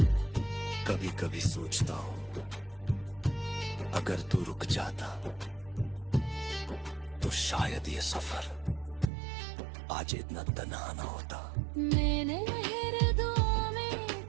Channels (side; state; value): left; drops out; at 9.1 s